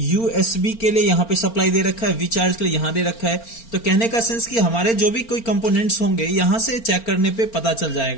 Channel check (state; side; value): late; right; 4.4 ms